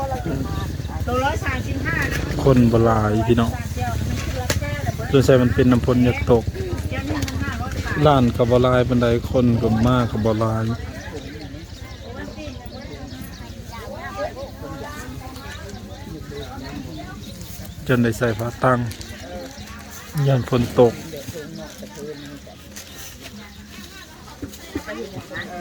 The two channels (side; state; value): both; identical; correlation 1.00